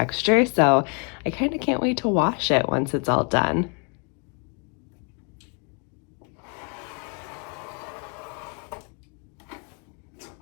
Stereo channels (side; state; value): right; quieter; 37.2 dB